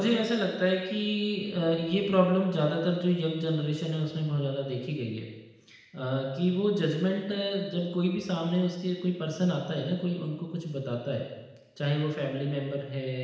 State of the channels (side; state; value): both; identical; correlation 1.00